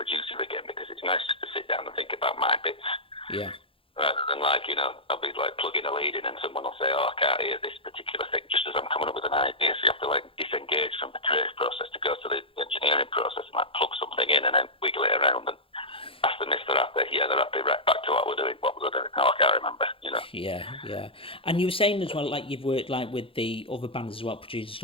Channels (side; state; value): right; late; 0.26 ms